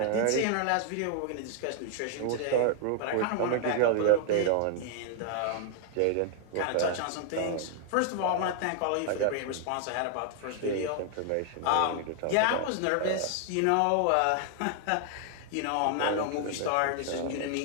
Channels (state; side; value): different; both; correlation 0.00